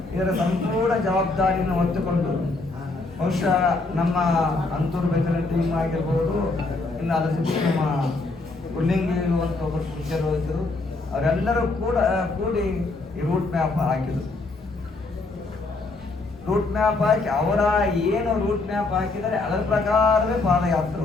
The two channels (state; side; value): quieter; right; 3.4 dB